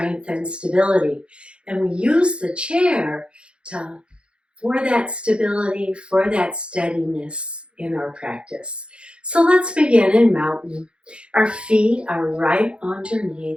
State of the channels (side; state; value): left; late; 0.057 ms